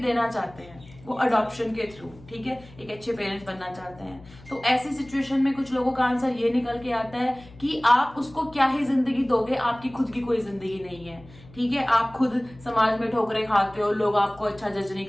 चाहते हैं, वो अडॉप्शन के थ्रू, ठीक है, एक अच्छे पेरेंट्स बनना चाहते हैं। तो ऐसी सिचुएशन में कुछ लोगों का आंसर ये निकल के आता है कि आप उसको क्या ही जिंदगी दोगे, आपकी खुद की कोई जिंदगी नहीं है, ठीक है। आप खुद समाज में ठोकरें खाते हो, लोग आपको अच्छा जज नहीं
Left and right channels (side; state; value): left; noise; hum, 21 dB below the sound